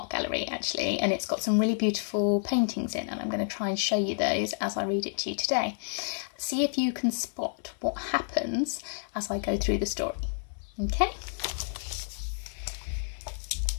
gallery actually, and it's got some really beautiful paintings in, and I'm going to try and show you those as I read it to you today. See if you can spot what happens as I go through the story. Okay?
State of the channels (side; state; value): right; silent; 58 dB below the other